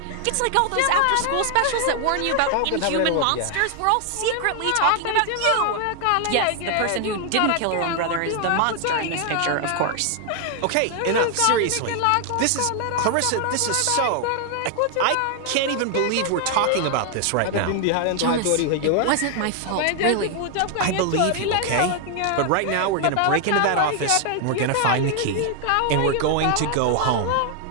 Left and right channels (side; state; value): both; different; correlation 0.00